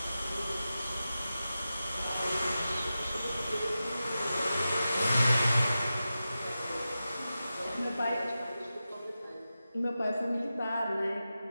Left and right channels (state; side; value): inverted; both; correlation -0.93